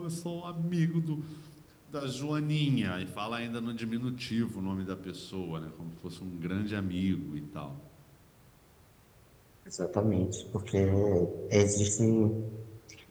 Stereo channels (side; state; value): both; identical; correlation 1.00